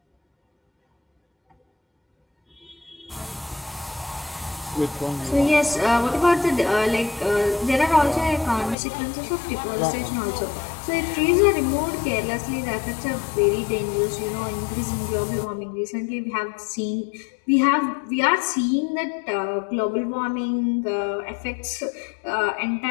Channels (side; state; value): right; drops out; at 8.8 s